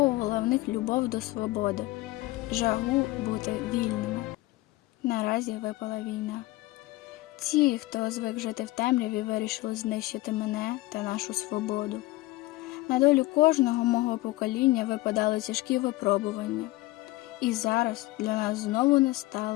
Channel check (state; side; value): quieter; right; 19.4 dB